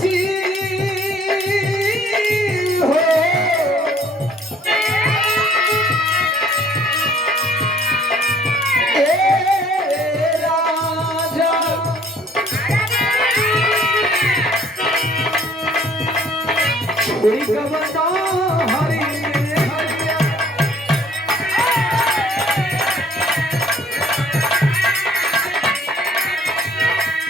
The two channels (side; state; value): both; normal; correlation 0.58